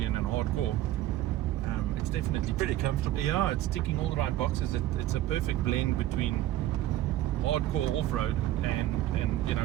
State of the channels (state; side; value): quieter; left; 14.2 dB